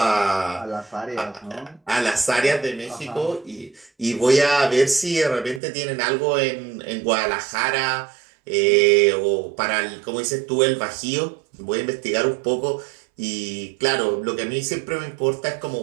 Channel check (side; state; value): left; drops out; at 5.6 s